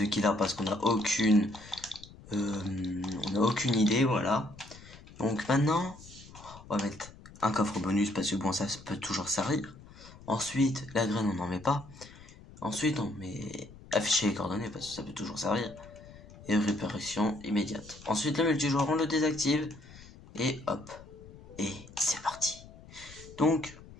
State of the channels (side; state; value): left; noise; rumble, 19 dB below the sound